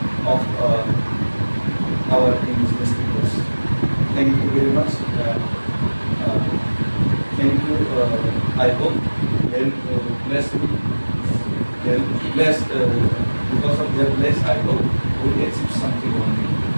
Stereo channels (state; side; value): inverted; both; correlation -1.00